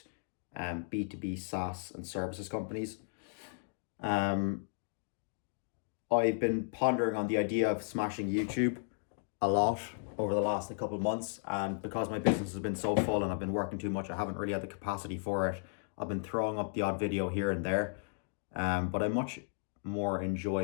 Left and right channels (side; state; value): right; silent; digital silence